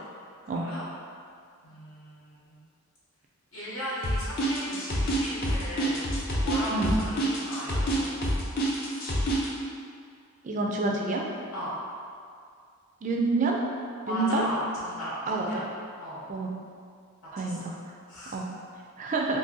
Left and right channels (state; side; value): normal; both; correlation 0.49